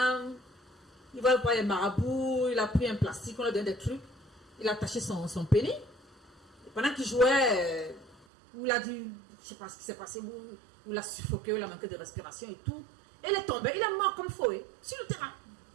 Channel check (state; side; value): drops out; left; at 8.2 s